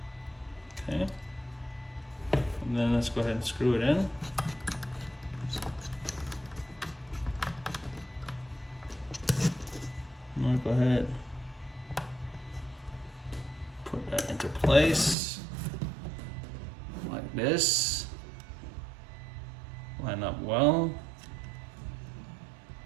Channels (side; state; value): left; drops out; at 15.2 s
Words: Okay. And then let's go ahead and screw it in. I'm gonna go ahead, put that into place like this. Line up well.